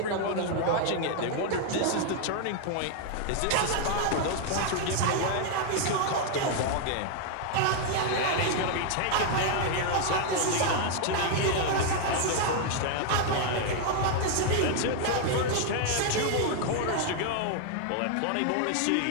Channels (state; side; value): different; both; correlation 0.00